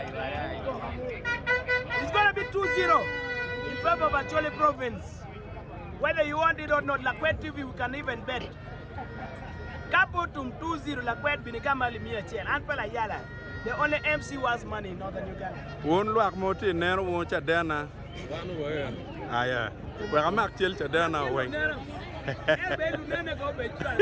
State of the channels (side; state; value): both; identical; correlation 1.00